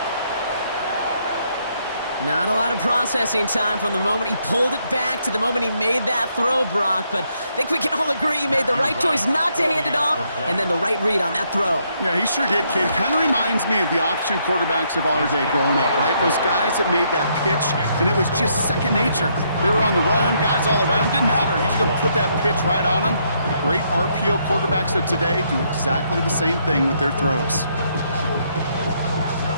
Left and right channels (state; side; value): inverted; both; correlation -0.73